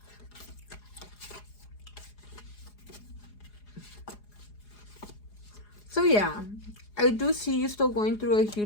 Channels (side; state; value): right; late; 4.8 ms